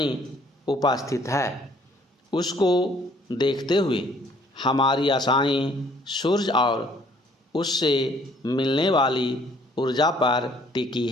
उपस्थित है, उसको देखते हुए हमारी आशाएं सूर्य और उससे मिलने वाली ऊर्जा पर टिकी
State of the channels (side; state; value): both; normal; correlation 0.61